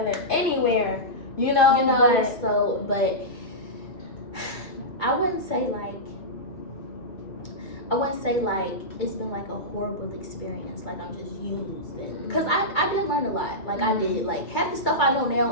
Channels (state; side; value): late; right; 2.2 ms